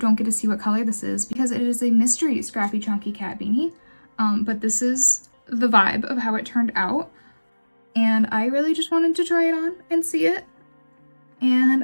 get to see what color this is because it is a mystery Scrappy Chunky Cat Beanie. But this is the vibe of how it turned out, and I really just wanted to try it on and see it, and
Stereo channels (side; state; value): both; inverted; correlation -1.00